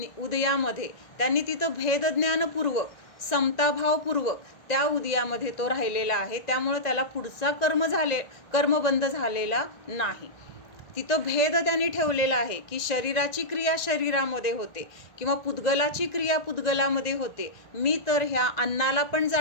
उदयामध्ये त्यांनी तिथं भेदज्ञानपूर्वक, समताभावपूर्वक त्या उदयामध्ये तो राहिलेला आहे. त्यामुळे त्याला पुढचा कर्मबंध झालेला नाही. तिथं भेद त्यांनी ठेवलेला आहे की शरीराची क्रिया शरीरामध्ये होते, किंवा पुद्गलाची क्रिया पुद्गलामध्ये होते. मी तर ह्या अन्नाला पण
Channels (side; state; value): right; late; 1.9 ms